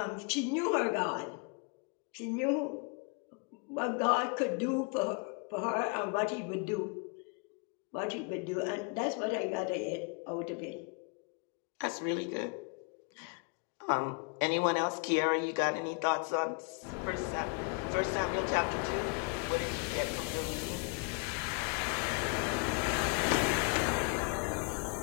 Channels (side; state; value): right; quieter; 33.4 dB